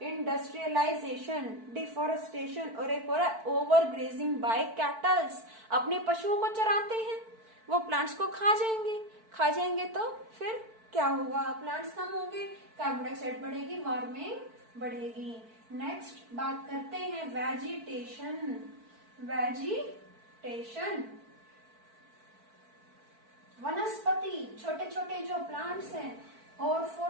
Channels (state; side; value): late; left; 4.5 ms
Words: डिफोरेस्टेशन, और एक और ओवर ग्रेजिंग बाय कैटल्स। अपने पशुओं को चराते हैं, वो प्लांट्स को खा जाएंगे तो फिर क्या होगा, प्लांट्स कम होंगे, कार्बन डाइऑक्साइड बढ़ेगी, वार्मिंग बढ़ेगी। नेक्स्ट बात करते हैं वेजिटेशन। वनस्पति, छोटे छोटे जो प्लांट्स हैं, और